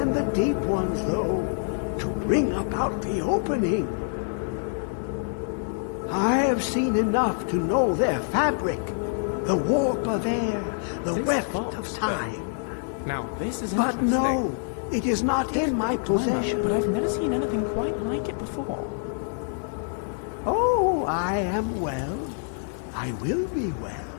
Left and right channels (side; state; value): right; silent; 61 dB below the other